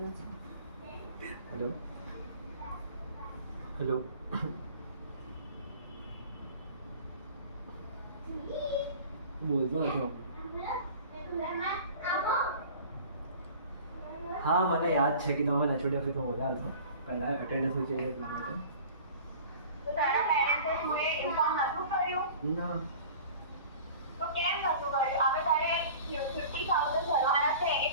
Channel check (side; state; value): both; inverted; correlation -0.43